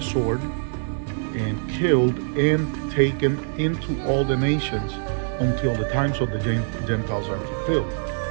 sword and killed and taken into all the nations until the times of the Gentiles are fulfilled.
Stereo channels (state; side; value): silent; left; 63 dB below the other